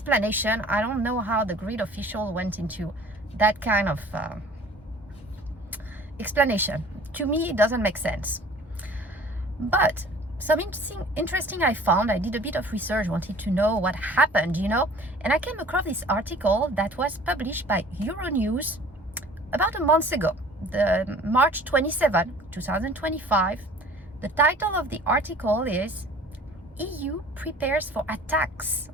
I don't know how the grid official went into that kind of explanation. To me, it doesn't make sense. But some interesting I found. I did a bit of research, wanted to know what happened, and I came across this article that was published by Euronews about a month ago. The March 27, 2025. The title of the article is EU prepares for attacks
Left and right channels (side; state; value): both; normal; correlation 0.48